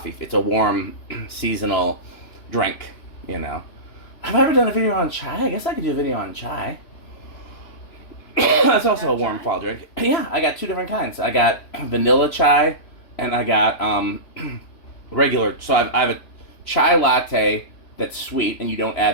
It's a warm seasonal drink, you know. Have I ever done a video on chai? I guess I could do a video on chai. That's also a warm fall drink. Yeah, I got two different kinds. I got vanilla chai and I got regular. So I have a chai latte that's sweet and you don't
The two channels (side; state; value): right; late; 3.0 ms